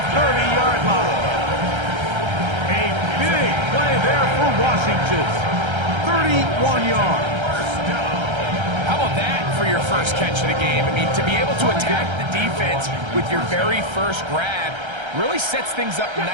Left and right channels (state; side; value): late; left; 1.3 ms